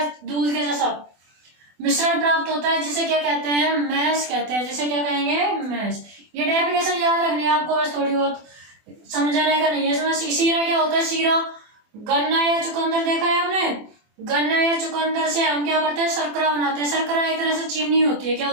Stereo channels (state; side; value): late; left; 24 ms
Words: दूध के जैसा मिश्रण प्राप्त होता है, जिसे क्या कहते हैं, मैश कहते हैं, जिसे क्या कहेंगे, मैश। ये डेफिनेशन याद रखनी है आपको, बस थोड़ी बहुत समझाने का नहीं है इसमें। शीरा क्या होता है, शीरा गन्ना या चुकंदर देखा है आपने, गन्ना या चुकंदर से हम क्या करते हैं, शर्करा बनाते हैं। शर्करा एक तरह से चीनी होती है, क्या